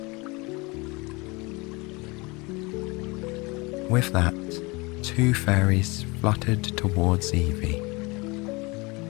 With that, two fairies fluttered towards Evie.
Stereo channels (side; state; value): right; quieter; 25.9 dB